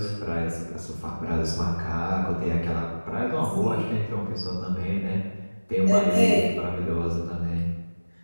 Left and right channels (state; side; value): inverted; both; correlation -1.00